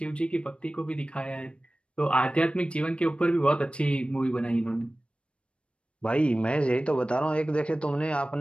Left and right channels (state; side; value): late; right; 0.058 ms